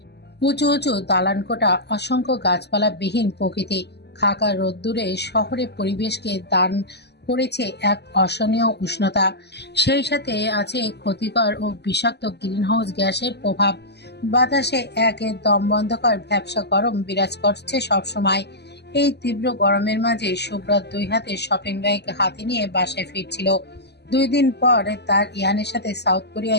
উঁচু উঁচু দালানকোঠা, অসংখ্য গাছপালাবিহীন প্রকৃতি, খাকা রোদ্দুরে শহরের পরিবেশকে দান করেছে এক অসহনীয় উষ্ণতা। সেই সাথে আছে ক্ষতিকর ও বিষাক্ত গ্রিনহাউস গ্যাসের প্রভাব। বাতাসে এক দমবন্ধকর ভ্যাপসা গরম বিরাজ করছে সবসময়। এই তীব্র গরমের মাঝে সুব্রত 2 হাতে শপিং ব্যাগ হাতে নিয়ে বাসায় ফিরছিল। 2 দিন পর তার ইহানের সাথে সাউথ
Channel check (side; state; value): right; late; 0.49 ms